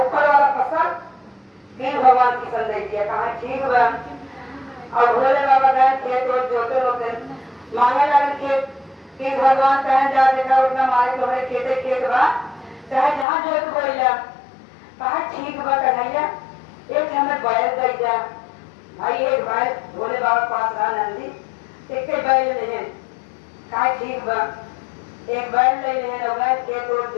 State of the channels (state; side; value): drops out; right; at 13.2 s